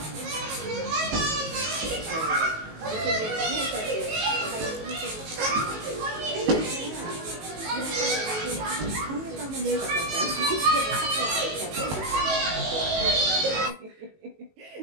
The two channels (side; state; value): left; late; 19 ms